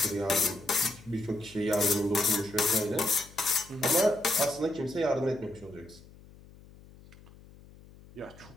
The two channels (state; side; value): noise; left; hum, 22 dB below the sound